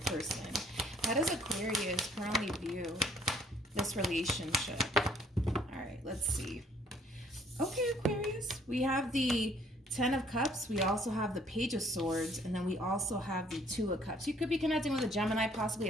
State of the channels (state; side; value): normal; both; correlation 0.61